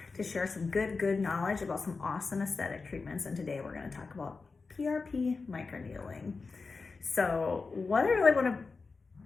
to share some good knowledge about some awesome aesthetic treatments, and today we're going to talk about PRP Microneedling. So what I really want to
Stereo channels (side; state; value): right; quieter; 4.3 dB